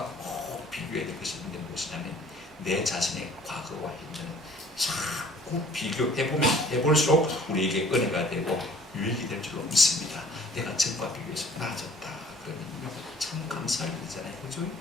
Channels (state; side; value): normal; both; correlation 0.53